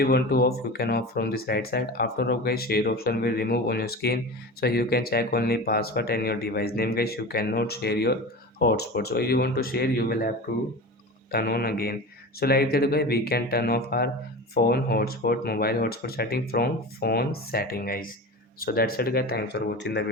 want to off, you can off from this right side. After off guys, share option will remove on your screen, so you can check only password and your device name guys. You cannot share your hotspot, so if you want to share you will have to turn on again. So like that guys, we can turn off our phone hotspot, mobile hotspot setting from phone setting guys. So that's it guys, thanks for watching the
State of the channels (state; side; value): normal; both; correlation 0.30